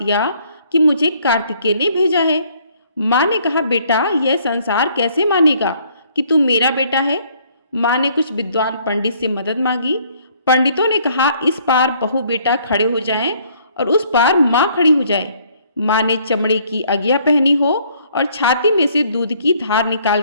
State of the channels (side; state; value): both; inverted; correlation -0.63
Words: कि मुझे कार्तिकेय ने भेजा है। माँ ने कहा, बेटा यह संसार कैसे मानेगा कि तू मेरा बेटा है? माँ ने कुछ विद्वान पंडित से मदद मांगी। पंडितों ने कहा, इस पार बहू बेटा खड़े हो जाएं और उस पार माँ खड़ी हो जाए। माँ ने चमड़े की अगिया पहनी हो और छाती में से दूध की धार